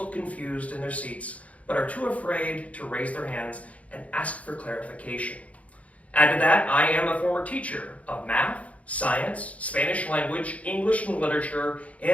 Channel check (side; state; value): right; late; 0.066 ms